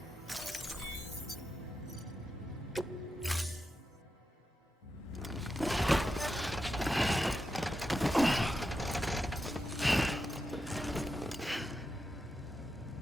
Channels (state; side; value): normal; both; correlation 0.88